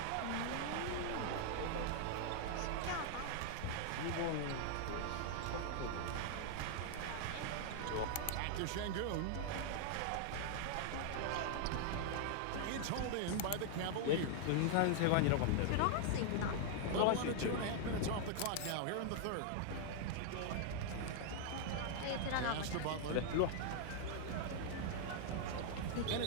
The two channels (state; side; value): different; both; correlation -0.01